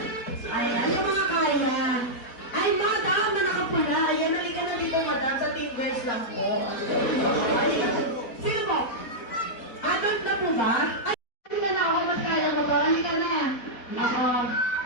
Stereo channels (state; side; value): late; right; 4.1 ms